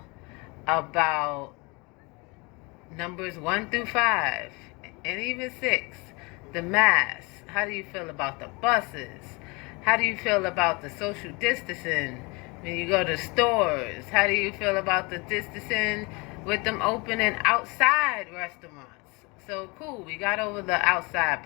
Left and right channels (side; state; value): right; quieter; 27.6 dB